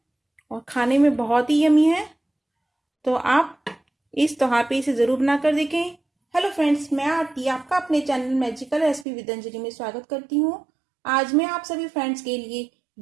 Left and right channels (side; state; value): left; drops out; at 9.1 s